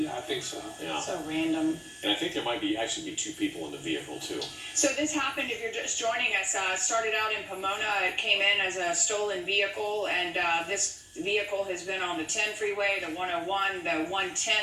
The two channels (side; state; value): both; identical; correlation 1.00